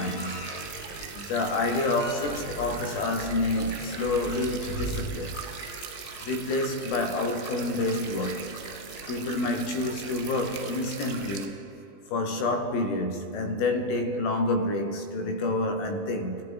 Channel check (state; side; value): late; right; 20 ms